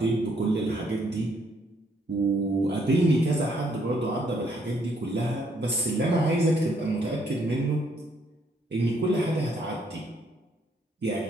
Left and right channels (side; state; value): both; normal; correlation 0.69